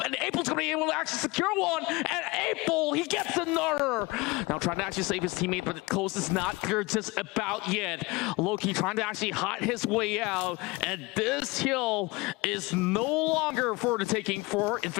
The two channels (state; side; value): quieter; right; 24.0 dB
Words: and April's going to be able to actually secure one, and April, he gets another. Now trying to actually save his teammate, but the close is not clear just about yet. Loki trying to actually hide his way out, and this hill is no longer for the taking for